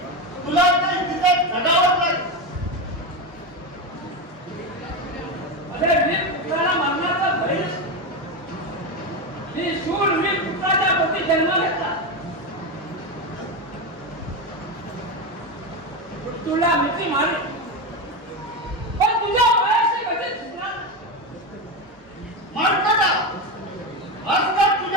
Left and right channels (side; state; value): both; normal; correlation 0.15